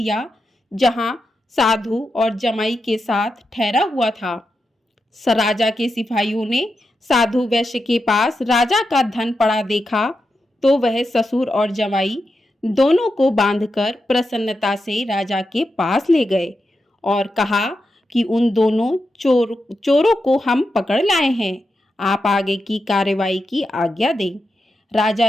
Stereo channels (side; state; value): both; normal; correlation 0.88